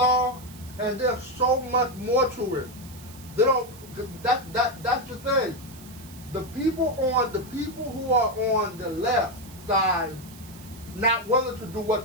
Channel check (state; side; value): noise; right; hiss, 20 dB below the sound